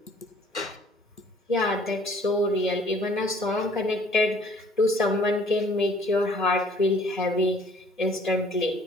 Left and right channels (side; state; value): both; normal; correlation 0.56